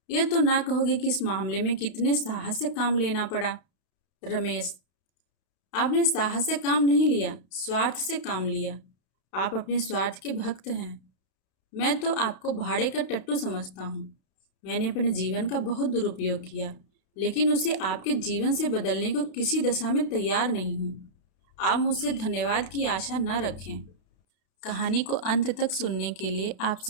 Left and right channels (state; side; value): late; right; 32 ms